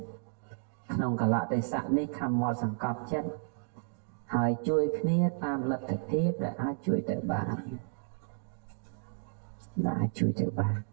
ក្នុងកលៈទេសៈនេះខំមកសង្កត់ចិត្តហើយជួយគ្នាតាមលទ្ធភាពដែលអាចជួយទៅបាន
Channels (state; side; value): silent; left; digital silence